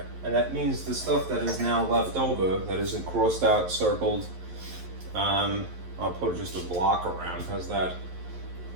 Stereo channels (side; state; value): left; late; 11 ms